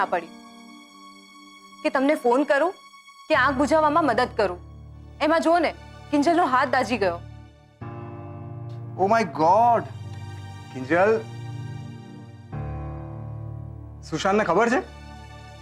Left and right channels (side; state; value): both; identical; correlation 1.00